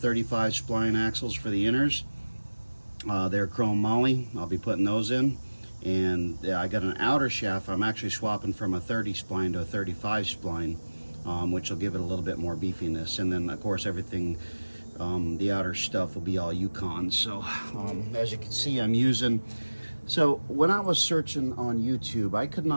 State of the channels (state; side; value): inverted; both; correlation -1.00